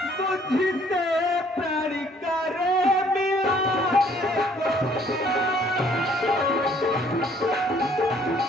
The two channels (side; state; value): both; normal; correlation 0.61